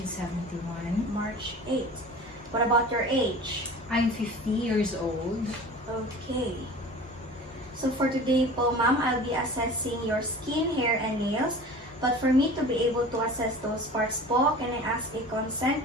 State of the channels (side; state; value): both; normal; correlation 0.40